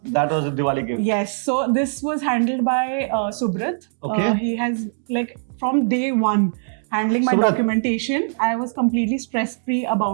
That was a Diwali gift. Yes. So this was handled by Subrat. Okay. He has like from day one handling my Subrat. documentation. I was completely stress-free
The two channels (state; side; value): silent; left; digital silence